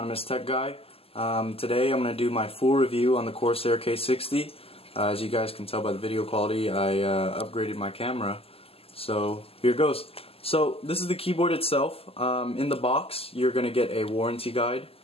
Tech Guy. Today I'm going to do my full review on the Corsair K60. As you guys can tell by the video quality, I upgraded my camera. So here goes. So this is the keyboard itself. In the box you're going to get a warranty guide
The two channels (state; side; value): late; right; 0.28 ms